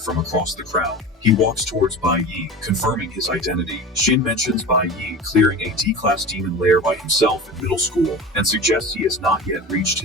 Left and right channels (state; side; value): normal; both; correlation 0.32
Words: from across the crowd. He walks towards Bai Yi, confirming his identity. Shin mentions Bai Yi clearing a D-class demon lair by himself in middle school, and suggests he has not yet reached